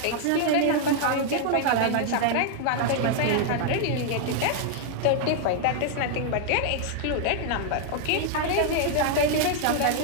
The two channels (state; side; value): different; both; correlation 0.00